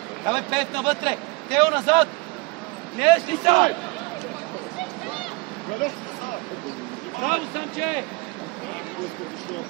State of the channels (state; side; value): quieter; left; 25.9 dB